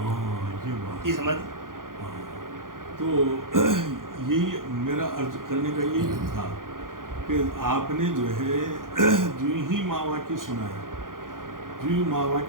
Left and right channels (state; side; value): late; left; 0.90 ms